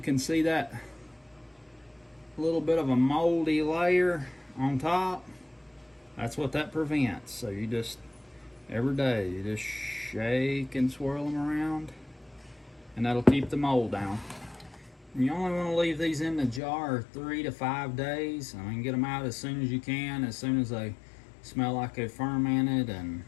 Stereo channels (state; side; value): drops out; right; at 16.6 s